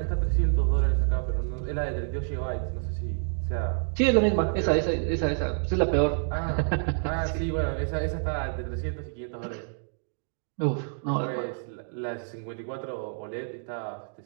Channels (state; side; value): silent; left; digital silence